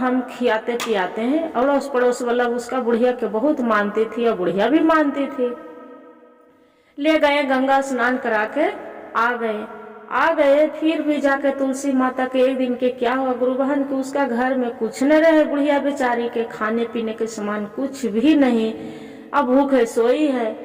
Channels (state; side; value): identical; both; correlation 1.00